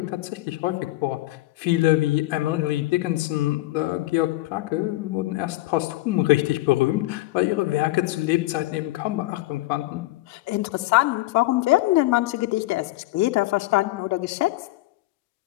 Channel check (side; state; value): right; quieter; 18.4 dB